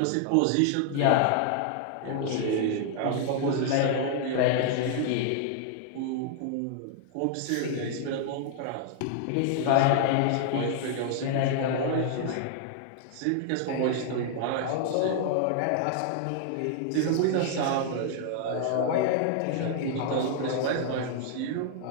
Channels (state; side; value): different; both; correlation 0.00